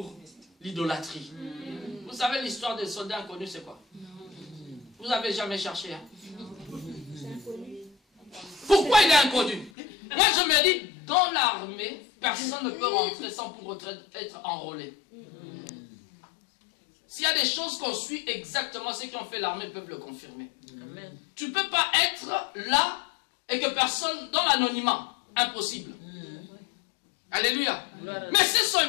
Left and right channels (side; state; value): right; drops out; at 9.7 s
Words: l'idolâtrie. Vous savez l'histoire des soldats inconnus, c'est quoi? Vous n'avez jamais cherché. Hein? Pourquoi il est inconnu? Moi je me dis, dans l'armée, personne ne peut rentrer sans pour autant être enrôlé. S'il y a des choses qu'on suit exactement, ceux qui ont fait l'armée peuvent le confirmer. Amen. Tu ne peux pas être là et que personne, dans l'anonymat, impossible. Alléluia. Mais ces